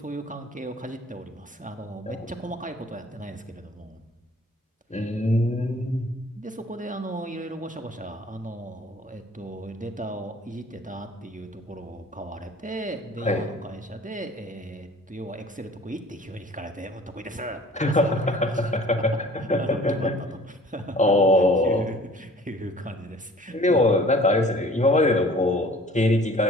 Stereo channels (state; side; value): normal; both; correlation 0.50